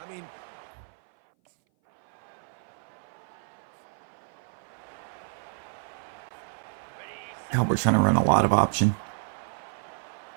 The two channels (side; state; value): left; silent; 57 dB below the other